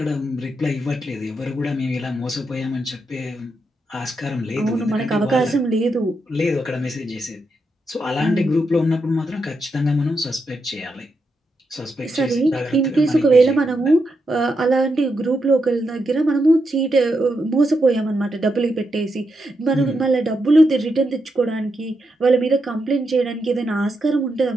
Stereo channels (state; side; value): normal; both; correlation 0.84